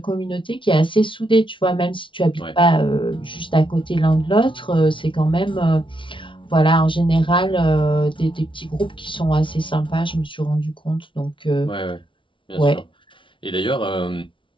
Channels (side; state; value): right; late; 0.25 ms